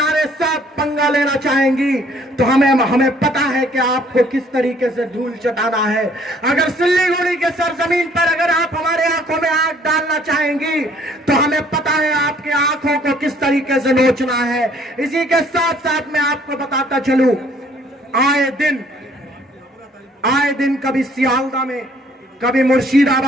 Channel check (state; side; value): normal; both; correlation 0.60